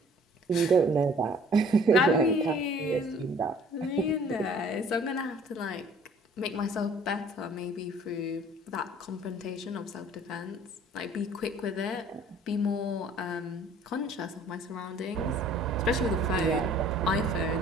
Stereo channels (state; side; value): normal; both; correlation 0.54